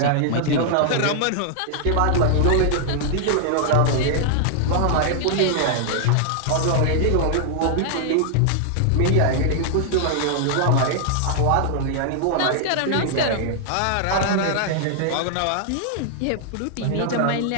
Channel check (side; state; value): both; different; correlation -0.01